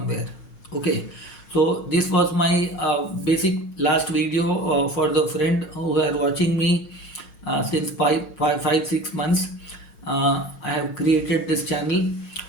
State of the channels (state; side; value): late; right; 5.5 ms